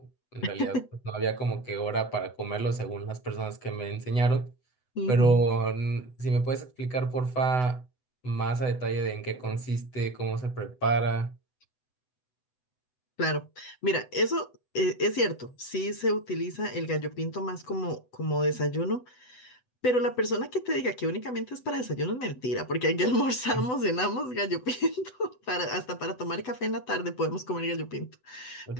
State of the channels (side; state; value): right; late; 8.0 ms